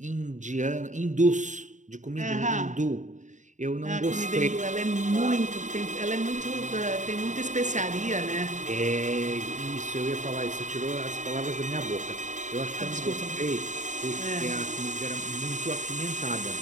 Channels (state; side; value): late; left; 0.36 ms